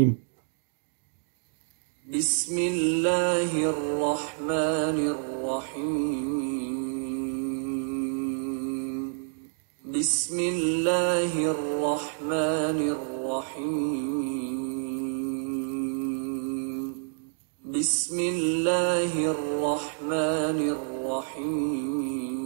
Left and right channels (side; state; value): left; silent; digital silence